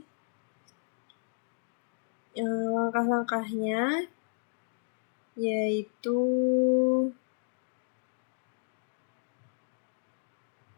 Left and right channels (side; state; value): right; silent; digital silence